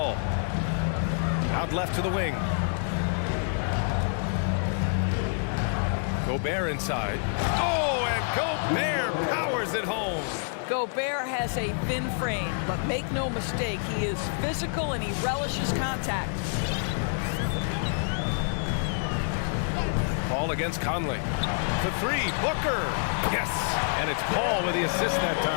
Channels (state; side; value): silent; right; 60 dB below the other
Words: Out left to the wing. Gobert inside. Oh, and Gobert powers it home. Gobert has a thin frame, but make no mistake, he is physical and he relishes contact. Paul against Conley. For 3, Booker. Yes, and it's Paul with the assist that